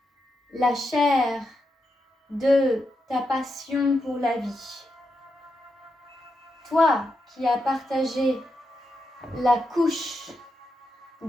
La chair de ta passion pour la vie. Toi qui as partagé la couche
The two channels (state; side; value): normal; both; correlation 0.85